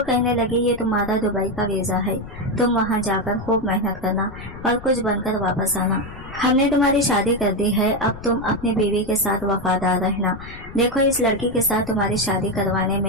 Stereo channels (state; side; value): noise; left; rumble, 14 dB below the sound